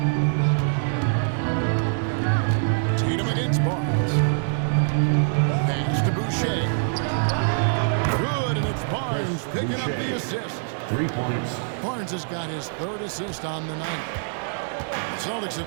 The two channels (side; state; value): left; silent; 56 dB below the other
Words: Tatum against Barnes. Pass to Boucher. Good, and it's Barnes picking up the assist. 3 points. Barnes has got his 3rd assist on the night. The Celtics